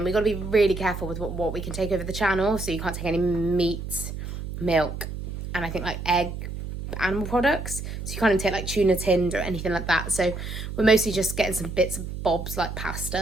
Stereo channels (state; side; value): noise; right; hum, 7 dB below the sound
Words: We've got to be really careful with what we can take over the channel, so you can't take any meat, milk, and I think like egg, animal products. So you can't even take like tuna tinned or anything like that. So we're mostly just getting some bits of bobs like